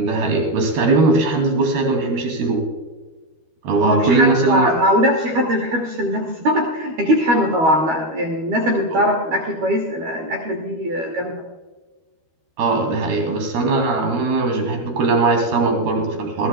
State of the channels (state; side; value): late; left; 13 ms